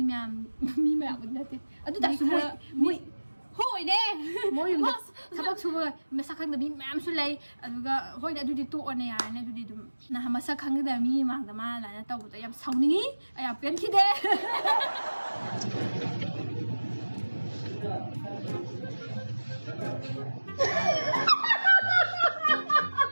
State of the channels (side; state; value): both; inverted; correlation -1.00